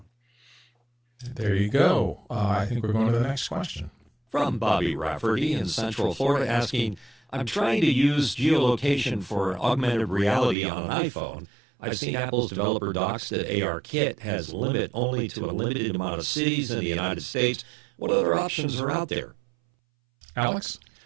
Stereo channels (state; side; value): drops out; left; at 10.6 s